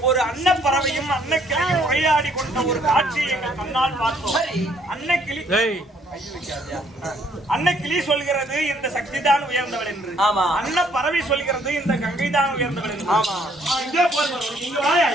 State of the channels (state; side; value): normal; both; correlation 0.65